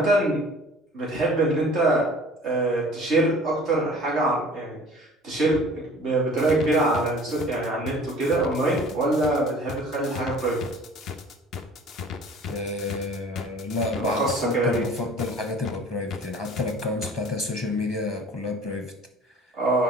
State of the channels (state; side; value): normal; both; correlation 0.47